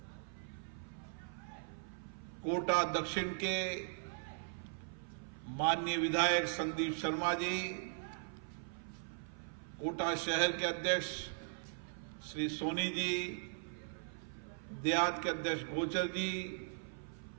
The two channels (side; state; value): left; silent; 52 dB below the other